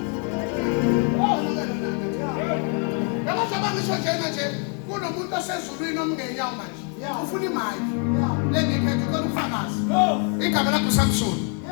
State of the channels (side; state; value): right; quieter; 37.7 dB